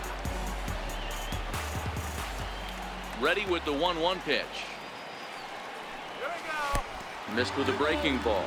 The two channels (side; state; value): both; identical; correlation 1.00